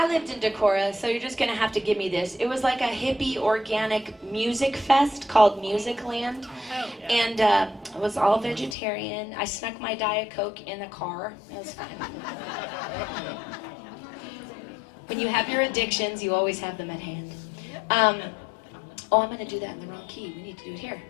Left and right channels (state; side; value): drops out; right; at 8.8 s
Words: lived in Decorah, so you're just gonna have to give me this. It was like a hippie organic music fest called Musicland. And it was all vegetarian. I snuck my Diet Coke in the car. It was fine. When you have your addictions, you always have them at hand. Oh, I'm gonna do that in the wrong key. We need to do it here.